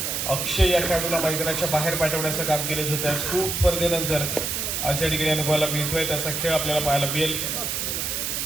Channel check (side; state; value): right; noise; hiss, 1 dB below the sound